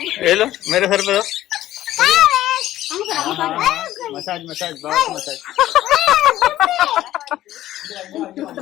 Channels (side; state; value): right; quieter; 14.0 dB